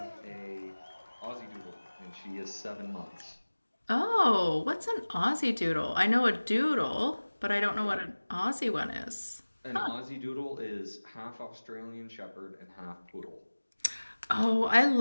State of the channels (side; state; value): both; inverted; correlation -1.00